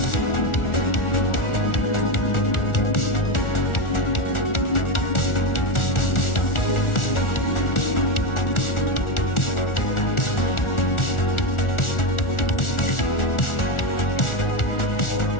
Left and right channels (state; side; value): late; right; 1.4 ms